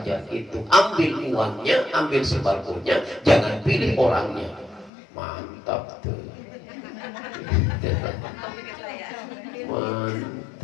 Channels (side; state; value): right; drops out; at 4.9 s